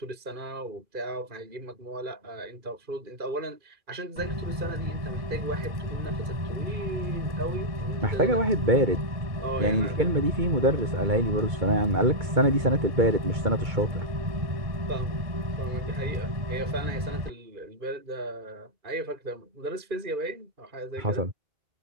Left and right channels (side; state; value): left; late; 2.2 ms